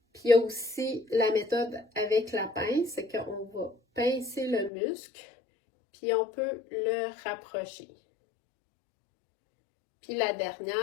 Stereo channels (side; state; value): right; drops out; at 4.7 s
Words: Puis il y a aussi la méthode avec la pince, c'est qu'on va pincer le muscle, puis on peut le rapprocher. Puis la